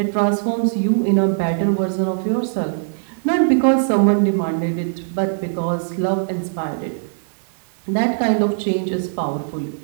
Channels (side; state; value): left; silent; 59 dB below the other